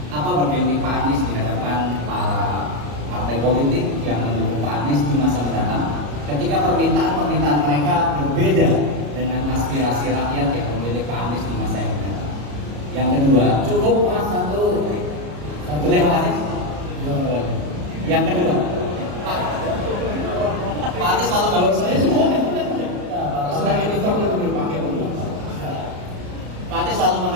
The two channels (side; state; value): left; late; 34 ms